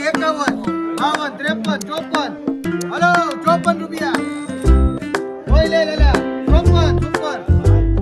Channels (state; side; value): identical; both; correlation 1.00